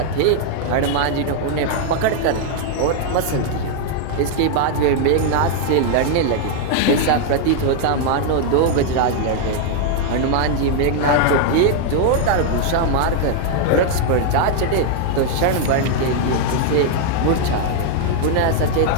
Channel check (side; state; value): both; different; correlation 0.00